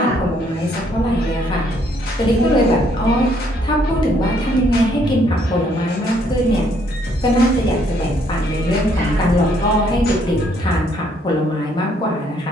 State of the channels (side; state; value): both; normal; correlation 0.68